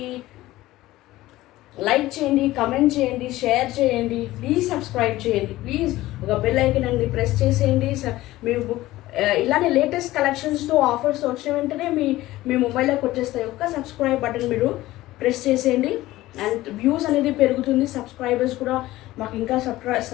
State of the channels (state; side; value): quieter; right; 16.9 dB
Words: లైక్ చేయండి, కమెంట్ చేయండి, షేర్ చేయండి, ప్లీజ్ సబ్స్క్రైబ్ చేయండి. ప్లీజ్ ఒక బెల్ ఐకాన్ అండి ప్రెస్ చేసేయండి. మీరు ఇలానే లేటెస్ట్ కలెక్షన్స్తో ఆఫర్స్ వచ్చిన వెంటనే మీ మొబైల్లోకి వచ్చేస్తాయి. ఒక్క సబ్స్క్రైబ్ బటన్ మీరు ప్రెస్ చేసేయండి. అండ్ వ్యూస్ అనేది పెరుగుతుంది, సబ్స్క్రైబర్స్ కూడా మాకు ఇంకా